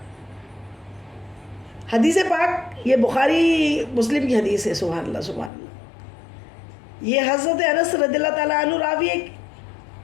حدیث پاک یہ بخاری مسلم کی حدیث ہے. سبحان اللہ سبحان اللہ. یہ حضرت انس رضی اللہ تعالیٰ عنہ راوی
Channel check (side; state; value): right; drops out; at 5.5 s